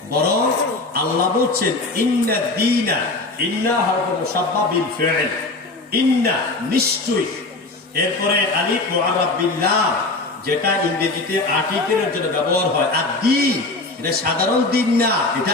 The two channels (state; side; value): quieter; right; 3.2 dB